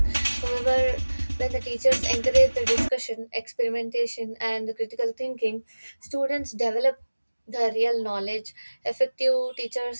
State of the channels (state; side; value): inverted; both; correlation -1.00